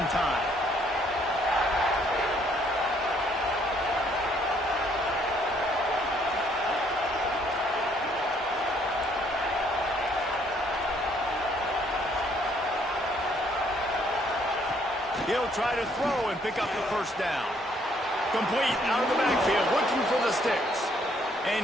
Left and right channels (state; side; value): normal; both; correlation 0.66